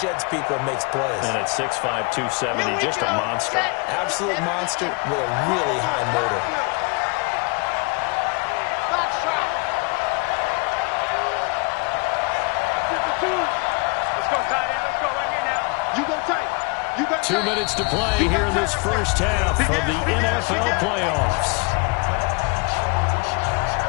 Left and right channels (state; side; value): quieter; right; 30.5 dB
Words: people and makes plays. And at 6'5", 270, just a monster. Absolute monster with a really high motor. Box trap. 52. Let's go, tight end. Let's go. 2 minutes to play here in this first half of the NFL playoffs.